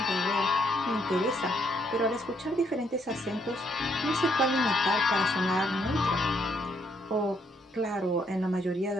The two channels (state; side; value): normal; both; correlation 0.72